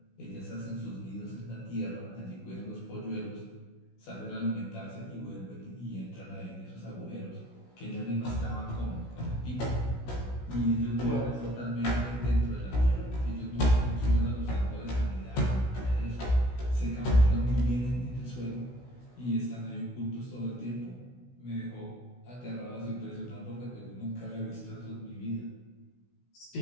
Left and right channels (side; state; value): right; late; 16 ms